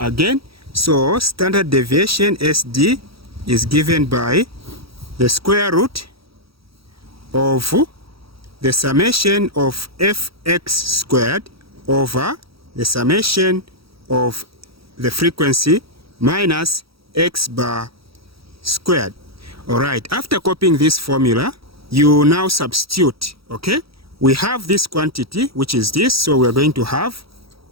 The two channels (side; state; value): left; late; 0.76 ms